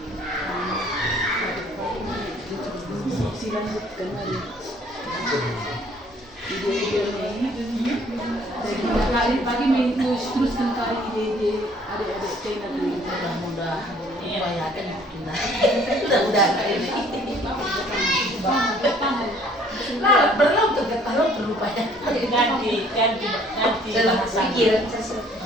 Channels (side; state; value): both; normal; correlation 0.58